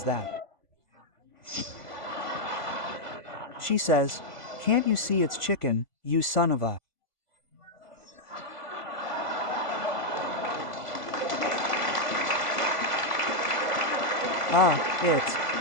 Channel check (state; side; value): late; right; 1.4 ms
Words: that?" She says, "Can't you see it's chicken, you son of a..." It's...